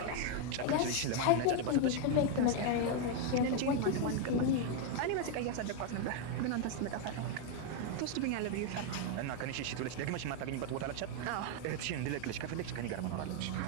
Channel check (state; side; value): different; both; correlation 0.01